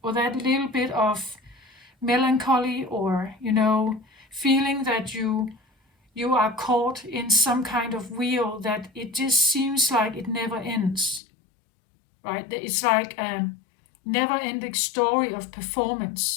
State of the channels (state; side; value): drops out; right; at 11.2 s